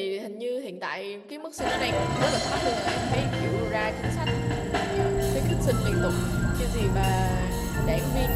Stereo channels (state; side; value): identical; both; correlation 1.00